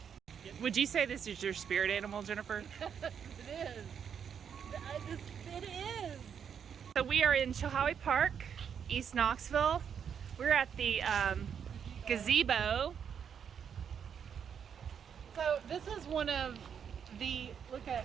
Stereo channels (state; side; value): quieter; left; 7.7 dB